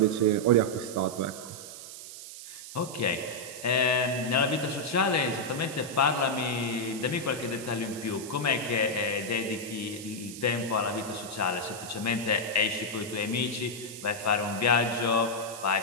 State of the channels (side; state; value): right; noise; hiss, 12 dB below the sound